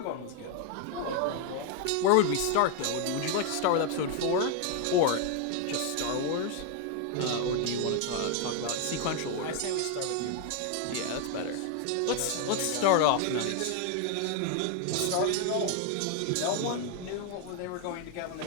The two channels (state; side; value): different; both; correlation 0.01